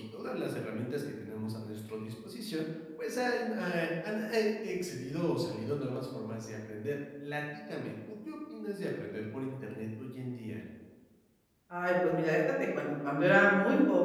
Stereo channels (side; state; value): both; identical; correlation 1.00